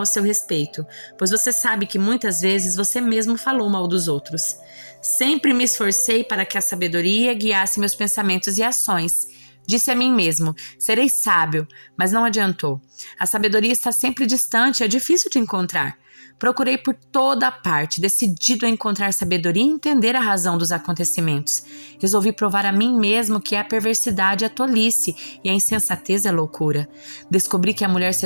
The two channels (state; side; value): inverted; both; correlation -1.00